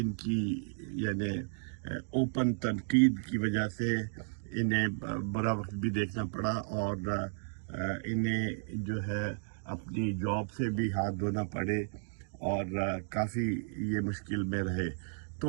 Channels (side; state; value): left; silent; digital silence